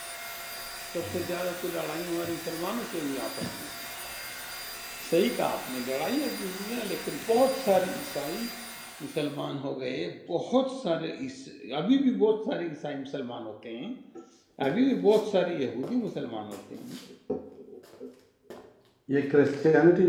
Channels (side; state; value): both; identical; correlation 1.00